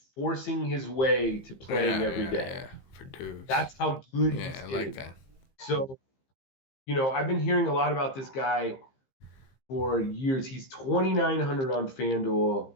forcing his way to playing every day. Verdugo. That's how good he's getting. Like that. So, I've been hearing a lot about this guy for years. He's 2,900 on FanDuel.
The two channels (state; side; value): late; right; 15 ms